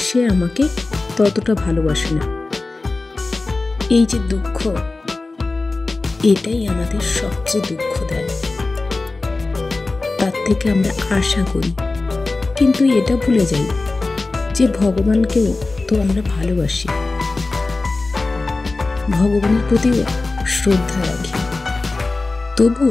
আমাকে ততটা ভালোবাসে না। এই যে দুঃখ, এটাই আমাদের সবচেয়ে দুঃখ দেয়। তার থেকে আমরা আশা করি, কিন্তু এটা ভুলে যাই যে ভগবানকেও তো আমরা ভালোবাসি, ভগবানের প্রতিও শ্রদ্ধা রাখি।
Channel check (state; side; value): quieter; right; 3.4 dB